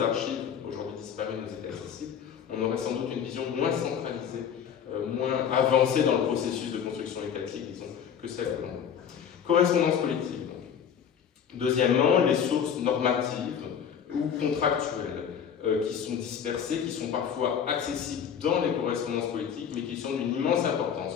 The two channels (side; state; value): right; quieter; 8.0 dB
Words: aujourd'hui disparues nous étaient accessibles, on aurait sans doute une vision moins centralisée, moins avancée dans le processus de construction étatique, disons, que celle que l'on a. Correspondance politique, donc. Deuxièmement, les sources normatives ou contractuelles qui sont dispersées, qui sont parfois accessibles dans les correspondances politiques, mais qui sont d'une immense